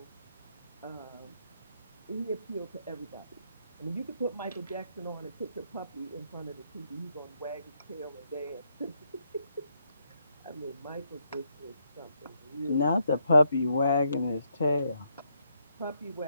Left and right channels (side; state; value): both; inverted; correlation -0.76